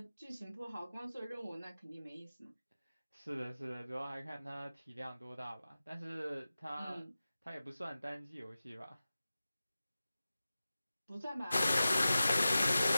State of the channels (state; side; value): inverted; both; correlation -0.95